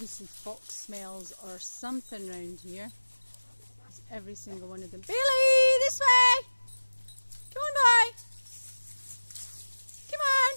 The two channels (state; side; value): inverted; both; correlation -1.00